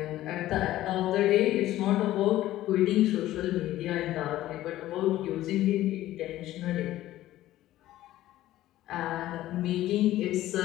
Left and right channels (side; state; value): right; quieter; 14.7 dB